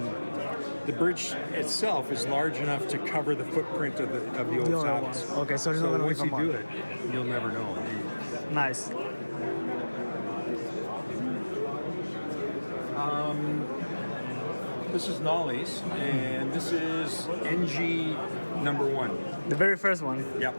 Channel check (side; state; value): both; inverted; correlation -1.00